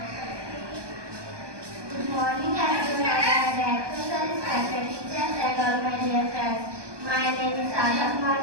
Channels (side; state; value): left; late; 1.2 ms